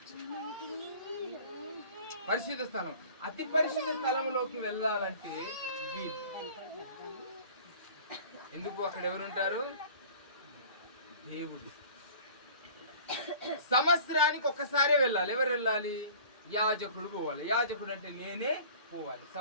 పరిశుద్ధ స్థలం, అతి పరిశుద్ధ స్థలంలోకి వెళ్ళాలంటే ఎందుకు? అక్కడ ఎవరుంటారు? దేవుడు. సంవత్సరానికి ఒక్కసారే వెళ్ళాలి. ఎవరు వెళ్ళాలి? యాజకుడు పోవాలి. యాజకుడు అంటే నేనే పోవాలి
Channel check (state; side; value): inverted; both; correlation -0.45